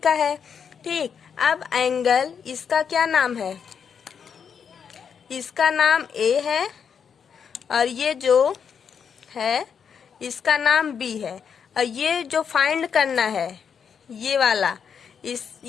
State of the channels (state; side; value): quieter; right; 7.0 dB